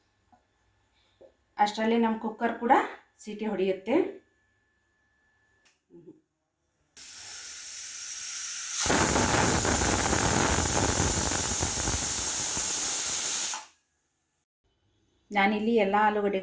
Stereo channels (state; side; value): identical; both; correlation 1.00